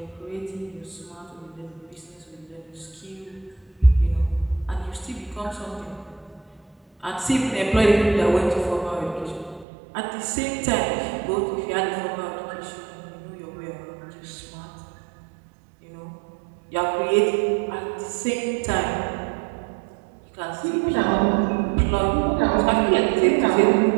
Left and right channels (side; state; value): left; drops out; at 9.7 s